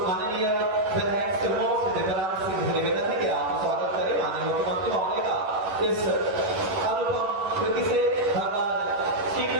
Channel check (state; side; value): late; left; 10 ms